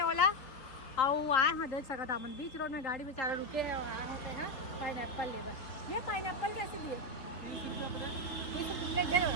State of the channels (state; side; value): late; right; 3.8 ms